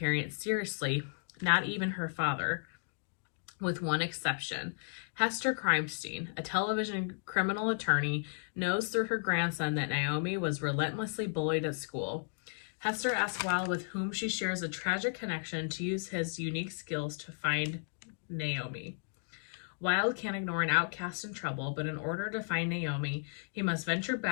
seriously, not even her father, with one exception. Hester Crimestein, a television criminal attorney, knows through her grandson that Naomi was relentlessly bullied at school. Hester asks Wilde, with whom she shares a tragic connection, to use his unique skills to find Naomi. Wilde can't ignore an outcast in trouble, but in order to find Naomi, he must venture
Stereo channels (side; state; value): right; silent; digital silence